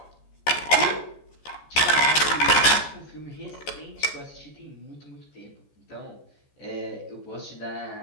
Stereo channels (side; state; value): right; late; 14 ms